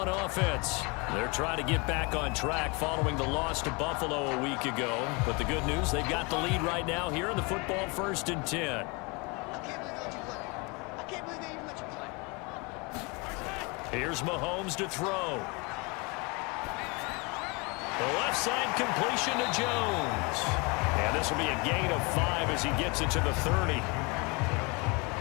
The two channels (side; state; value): right; quieter; 29.1 dB